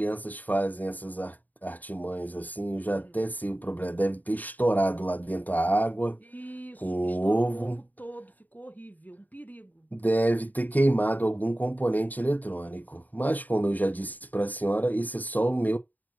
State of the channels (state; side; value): late; right; 0.082 ms